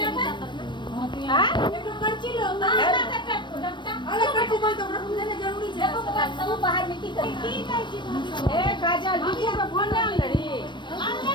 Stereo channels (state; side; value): late; right; 0.22 ms